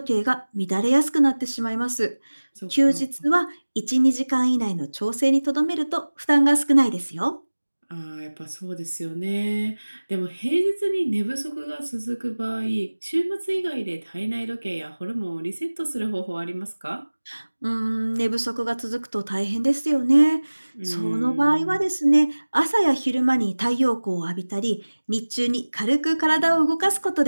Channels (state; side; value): inverted; both; correlation -1.00